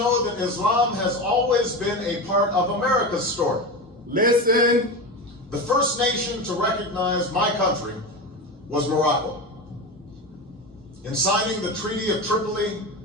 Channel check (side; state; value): both; normal; correlation 0.23